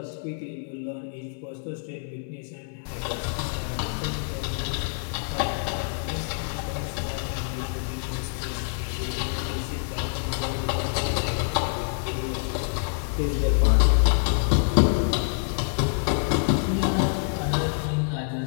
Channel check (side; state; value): right; silent; 61 dB below the other